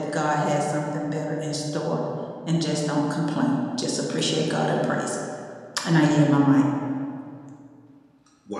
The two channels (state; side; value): identical; both; correlation 1.00